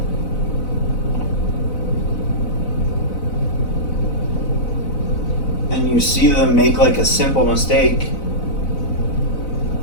when you see them make like a simple mistake,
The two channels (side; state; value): right; late; 4.0 ms